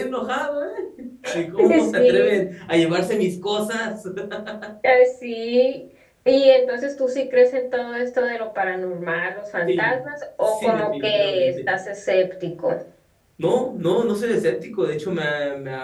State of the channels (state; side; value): identical; both; correlation 1.00